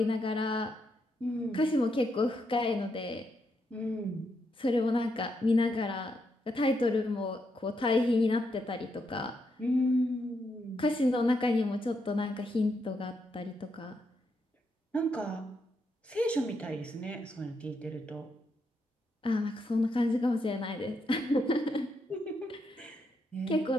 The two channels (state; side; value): normal; both; correlation 0.80